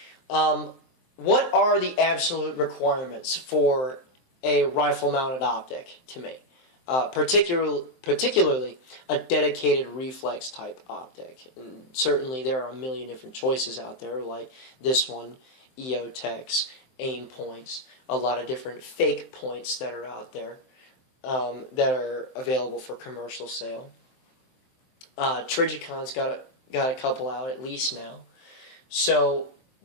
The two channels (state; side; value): late; right; 23 ms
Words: What are the absolute requirements for a rifle-mounted optic to me? Particularly a dedicated reflex-type optic. And certainly there are a million different choices out there, like this one, EOTechs, aim points, a lot of different fake points that are out there that are available for commercial sale. Trigicon's got a couple out at least now. So